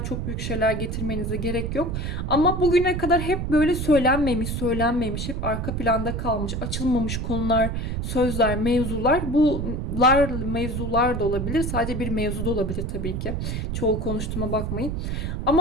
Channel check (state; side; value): noise; right; rumble, 3 dB below the sound